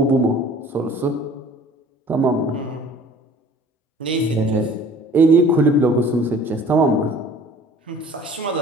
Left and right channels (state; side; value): normal; both; correlation 0.48